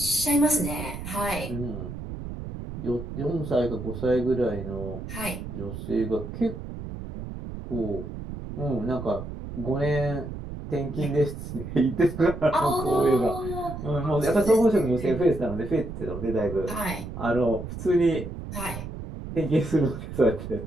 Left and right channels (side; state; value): right; noise; rumble, 9 dB below the sound